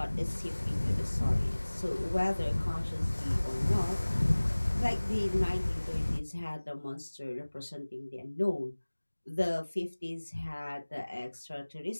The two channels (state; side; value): inverted; both; correlation -1.00